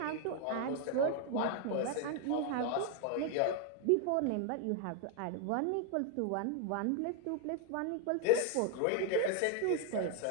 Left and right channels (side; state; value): both; different; correlation 0.01